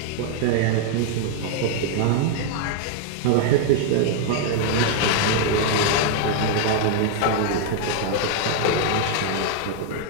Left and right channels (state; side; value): different; both; correlation 0.00